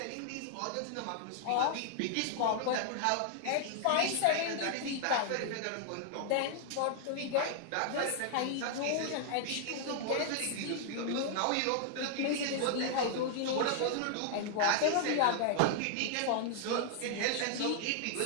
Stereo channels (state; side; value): different; both; correlation -0.01